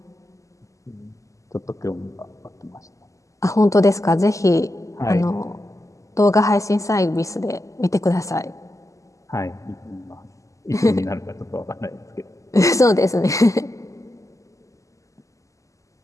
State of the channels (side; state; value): right; late; 0.16 ms